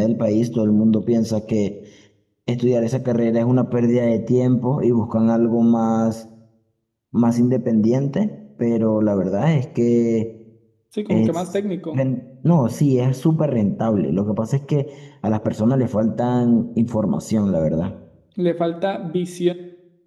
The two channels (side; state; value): both; identical; correlation 1.00